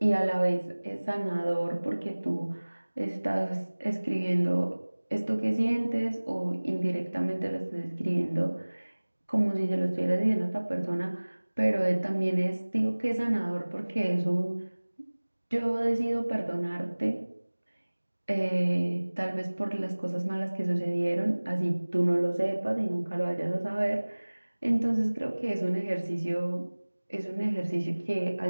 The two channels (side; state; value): both; inverted; correlation -1.00